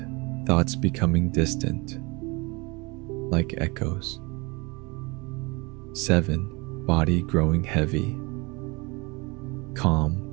Thoughts becoming distant, like echoes. 7. Body growing heavy, calm.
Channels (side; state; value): left; quieter; 26.8 dB